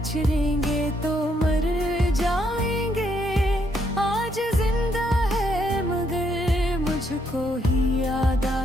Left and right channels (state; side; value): normal; both; correlation 0.74